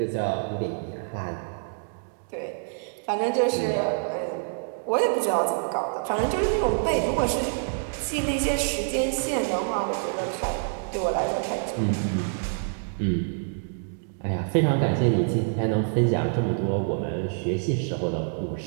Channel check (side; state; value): left; silent; digital silence